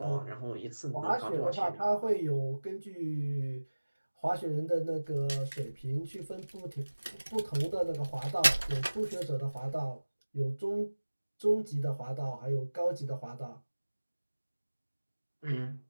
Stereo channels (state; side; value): inverted; both; correlation -1.00